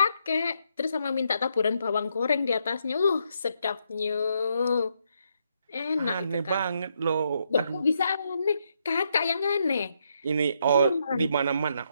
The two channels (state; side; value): inverted; both; correlation -0.77